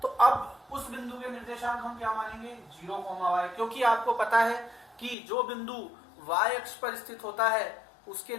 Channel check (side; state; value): right; drops out; at 5.2 s